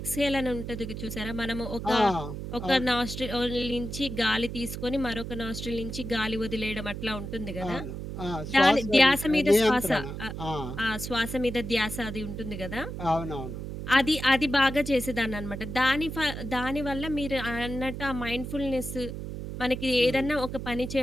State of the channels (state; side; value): noise; right; hum, 7 dB below the sound